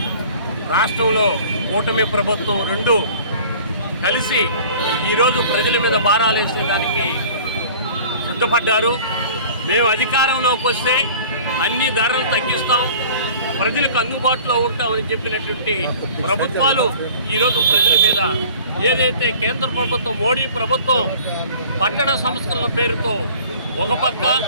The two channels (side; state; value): both; inverted; correlation -0.46